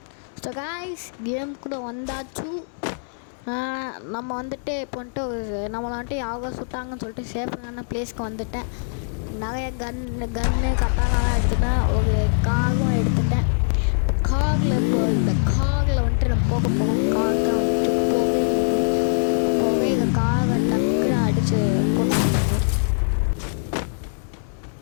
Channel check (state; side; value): silent; right; 63 dB below the other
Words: ஸோ காய்ஸ் கேமுக்குள்ளே வந்தாச்சு. நம்ம வந்துட்டு இப்போ வந்துட்டு நம்மளை வந்துட்டு யாவோ சுட்டாங்கன்னு சொல்லிட்டு சேஃபான பிளேஸ்க்கு வந்துட்டேன். நிறைய கன்னு கட்டாலாம் எடுத்துட்டேன். ஒரு காகும் எடுத்துட்டேன். காகில் இப்போ இந்த காகில் வந்துட்டு நம்ம போக போவோம். காகை வந்துட்டு போக இந்த காகை டக்குன்னு அடித்து போட்டு